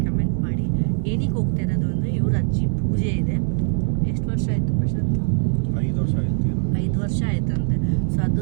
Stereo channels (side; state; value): left; silent; 63 dB below the other